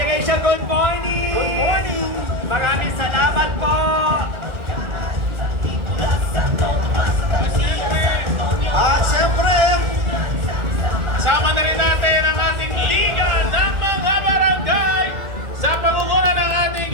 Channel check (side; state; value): left; late; 1.4 ms